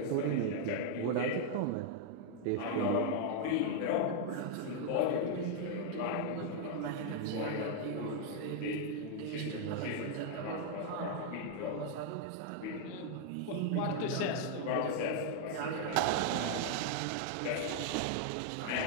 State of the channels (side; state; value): both; different; correlation 0.00